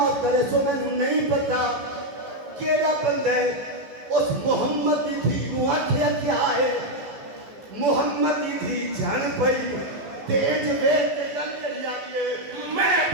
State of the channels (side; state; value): left; late; 15 ms